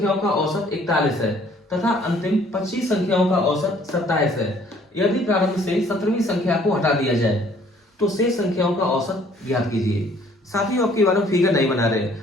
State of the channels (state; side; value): normal; both; correlation 0.59